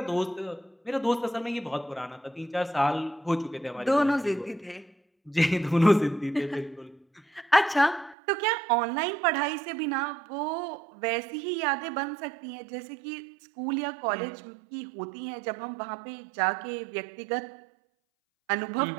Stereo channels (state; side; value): drops out; left; at 8.2 s